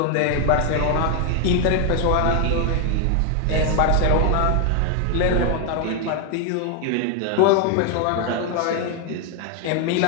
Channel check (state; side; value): different; both; correlation 0.00